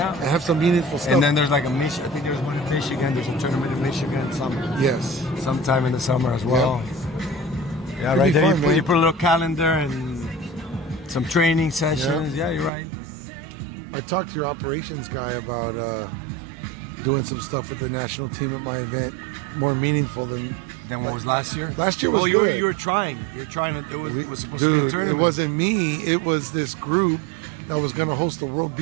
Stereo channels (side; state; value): left; drops out; at 12.7 s